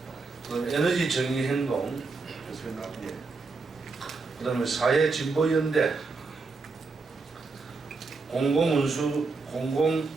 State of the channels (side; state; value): left; quieter; 4.1 dB